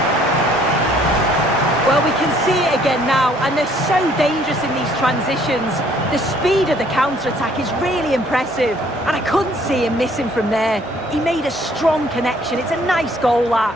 Well, we can see it again now, and they're so dangerous in these transitions. The speed of the counter-attack is really impressive, and I couldn't see him missing from there. He made a strong connection. It's a nice goal, that.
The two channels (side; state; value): both; normal; correlation 0.61